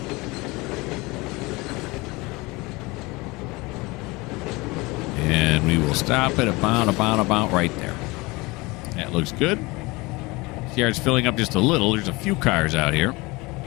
And we will stop it about right there. That looks good. This yard's filling up just a little. There's a few cars out here.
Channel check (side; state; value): right; quieter; 23.7 dB